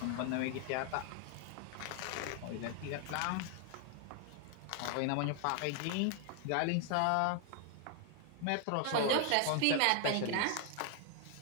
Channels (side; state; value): both; different; correlation 0.00